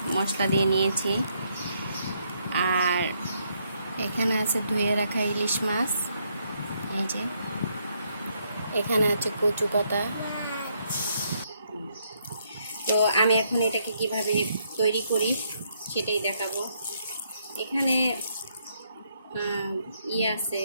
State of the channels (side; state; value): both; inverted; correlation -0.74